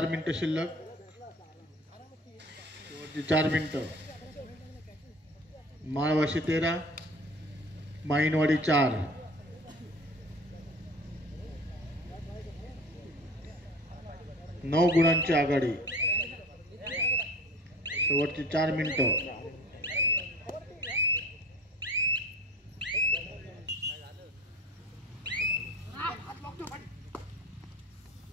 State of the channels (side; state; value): both; normal; correlation 0.41